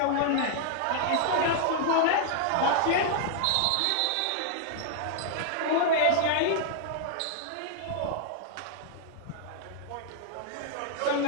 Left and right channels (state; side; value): different; both; correlation 0.00